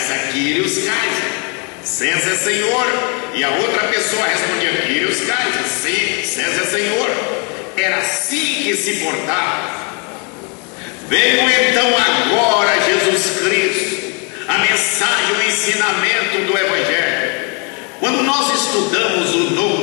Kyrios Kaiser, César é Senhor. E a outra pessoa respondia, Kyrios Kaiser, sim, César é Senhor. Era assim que se portava. Veio então agora Jesus Cristo, a mensagem, o ensinamento do Evangelho. Quando nós estudamos o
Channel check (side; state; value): right; quieter; 34.3 dB